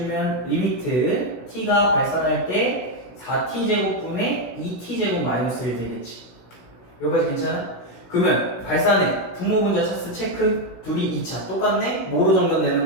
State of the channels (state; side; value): late; right; 16 ms